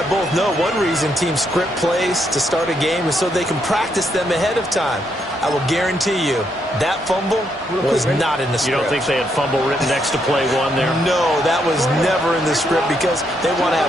both know, one reason teams script plays to start a game is so they can practice them ahead of time. I will guarantee you that fumble was not in the script. You don't think they had fumble written next to play one there? No, that was never in the script because they want to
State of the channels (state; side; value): normal; both; correlation 0.77